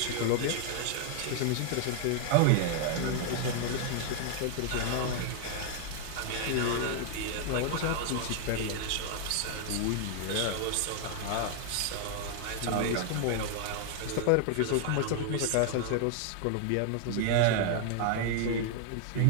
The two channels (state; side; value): different; both; correlation 0.00